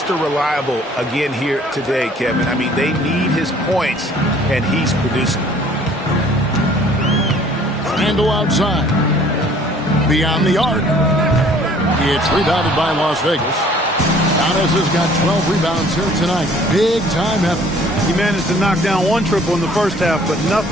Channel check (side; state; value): both; normal; correlation 0.55